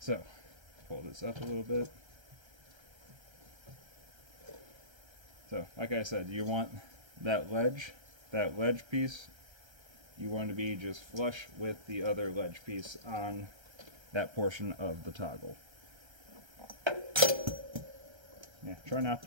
pull this up a little bit. So, like I said, you want that ledge piece, you want to be just flush with the other ledge piece on that portion of the toggle. Yeah, try not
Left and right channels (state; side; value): late; left; 1.3 ms